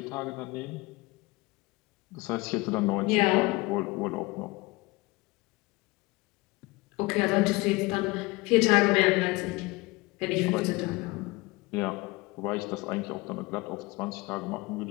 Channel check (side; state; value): right; quieter; 23.2 dB